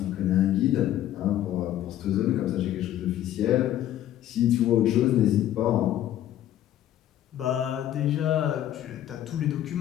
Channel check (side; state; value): right; quieter; 12.2 dB